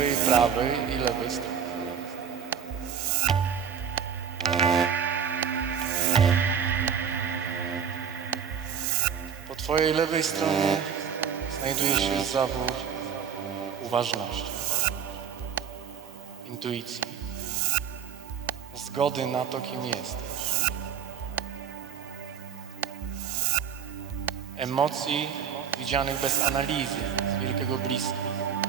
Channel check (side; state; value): left; quieter; 7.7 dB